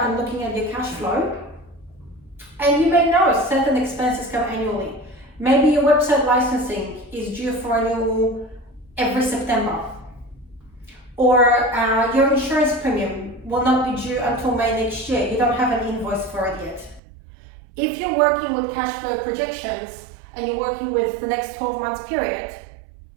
looking at your cash flow, and you may know certain expenses come annually. Maybe your website licensing is due for renewal every September, or your insurance premium will not be due until May next year. You don't have an invoice for it yet. If you're working with cash flow projections and you're working with the next 12 months period,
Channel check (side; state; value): left; drops out; at 17.0 s